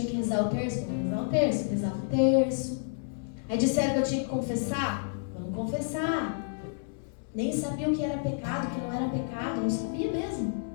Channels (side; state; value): right; silent; digital silence